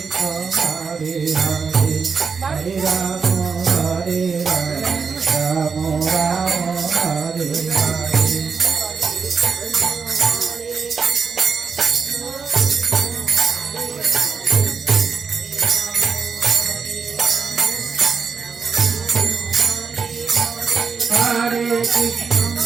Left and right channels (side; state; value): left; quieter; 5.5 dB